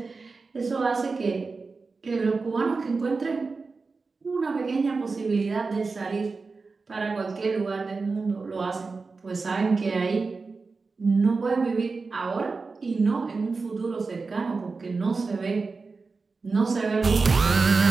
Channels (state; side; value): quieter; left; 4.2 dB